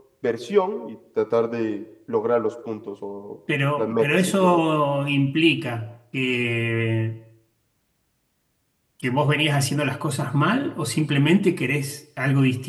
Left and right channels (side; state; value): both; identical; correlation 1.00